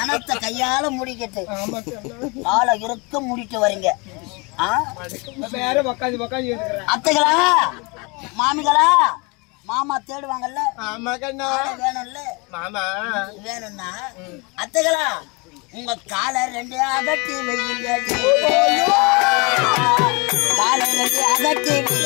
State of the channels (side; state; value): right; quieter; 28.8 dB